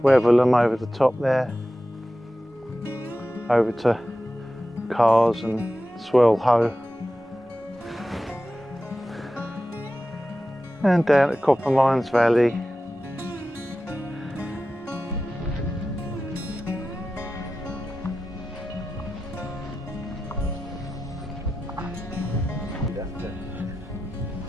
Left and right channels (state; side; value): normal; both; correlation 0.93